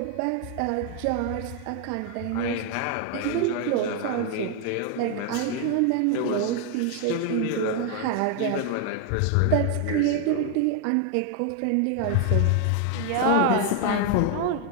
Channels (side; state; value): both; different; correlation 0.01